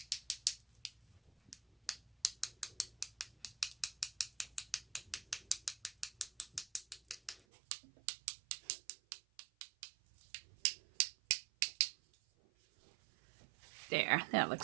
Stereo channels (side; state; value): left; drops out; at 7.4 s